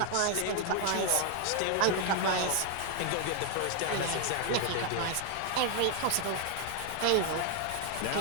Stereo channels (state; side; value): different; both; correlation 0.00